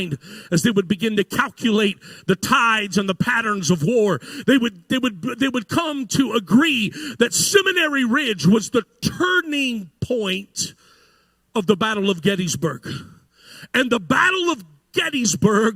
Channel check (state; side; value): identical; both; correlation 1.00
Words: as they would begin to calculate the tides and the patterns of war, they would come to agree that Seminary Ridge was the turning point of the Battle of Gettysburg. And the Battle of